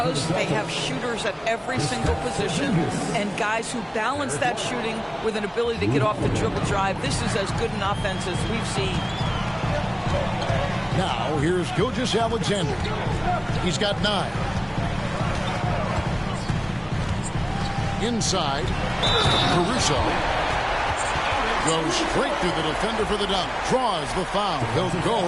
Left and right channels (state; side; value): identical; both; correlation 1.00